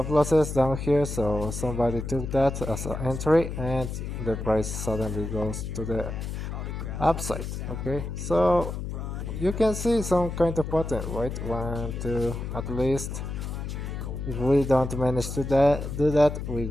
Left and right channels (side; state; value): left; noise; hum, 5 dB below the sound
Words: losses down here, so somebody took that as an entry and the price suddenly goes to the upside. Okay, so you can see some kind of pattern, right? 1, 2, at least. If we don't manage to do that, we